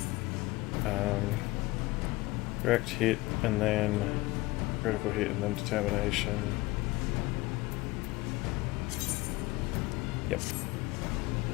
Direct hit, and then critical hit, and then determination. Yep.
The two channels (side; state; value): right; quieter; 20.9 dB